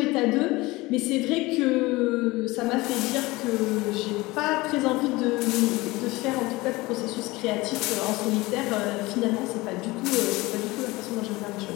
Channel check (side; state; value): right; quieter; 21.2 dB